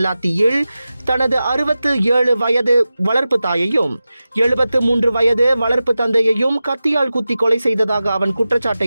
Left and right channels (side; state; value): both; inverted; correlation -0.94